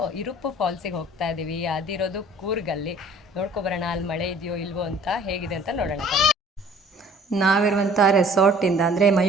ಇರುಪ್ಪು ಫಾಲ್ಸಿಗೆ ಹೋಗ್ತಾ ಇದ್ದೀವಿ. ಅದಿರೋದು ಕೂರ್ಗಲ್ಲಿ. ನೋಡ್ಕೊಬರೋಣ ಅಲ್ಲಿ ಮಳೆ ಇದೆಯೋ ಇಲ್ವೋ ಅಂತ, ಹೇಗಿದೆ ಅಂತ ನೋಡೋಣ. ನಾವಿರುವಂಥ ರೆಸಾರ್ಟಿಂದ ಅಂದರೆ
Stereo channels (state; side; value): normal; both; correlation 0.52